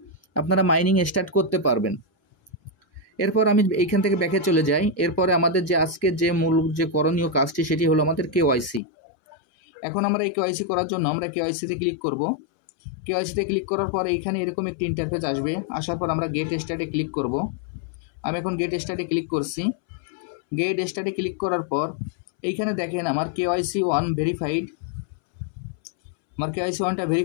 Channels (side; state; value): right; drops out; at 8.8 s